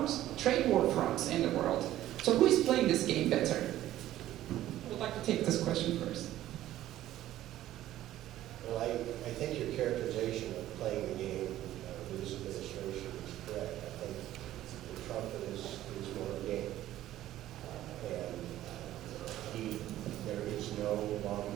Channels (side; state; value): left; quieter; 13.8 dB